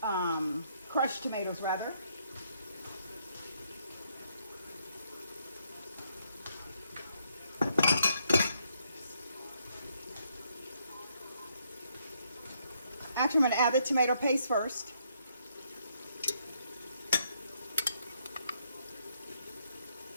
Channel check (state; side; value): inverted; both; correlation -0.73